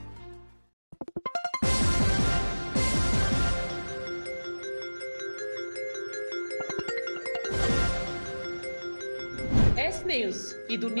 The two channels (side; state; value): both; inverted; correlation -1.00